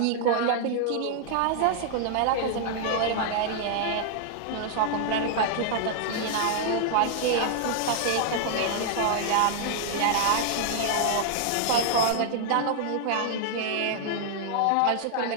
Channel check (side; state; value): both; different; correlation -0.01